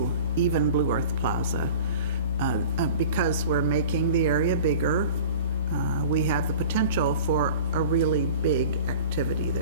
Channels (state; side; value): inverted; both; correlation -0.41